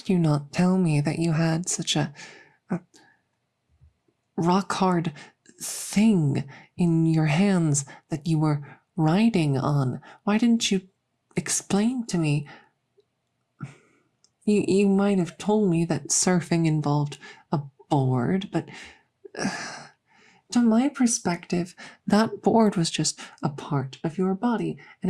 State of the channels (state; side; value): identical; both; correlation 1.00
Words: you not tell me that you had such a rock hard thing in your hands that you were riding on? Why didn't you explain to me? You might have told me that surfing involved a board, but to my perspective, that board was just a part of your body,